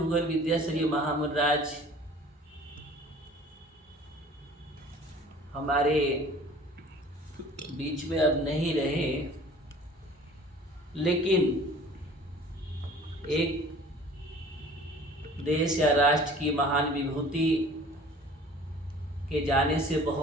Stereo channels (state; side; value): normal; both; correlation 0.48